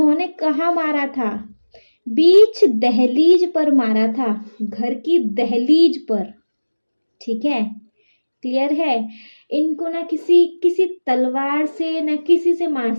कहाँ मारा था, बीच दहलीज पर मारा था, घर की दहलीज पर, ठीक है, क्लियर है। इनको ना किसी किसी तलवार से ना किसी से मार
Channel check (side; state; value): both; inverted; correlation -1.00